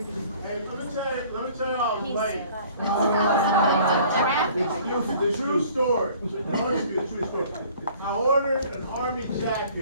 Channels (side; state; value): both; inverted; correlation -0.52